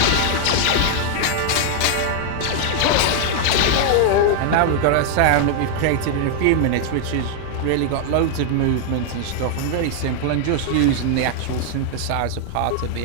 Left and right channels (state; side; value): different; both; correlation 0.00